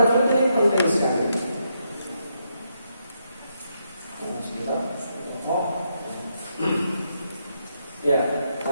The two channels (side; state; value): both; inverted; correlation -0.80